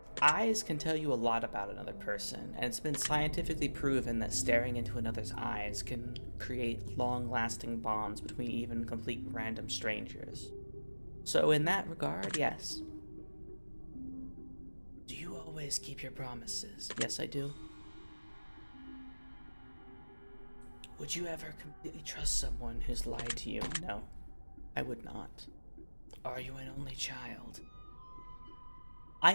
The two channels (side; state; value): both; inverted; correlation -1.00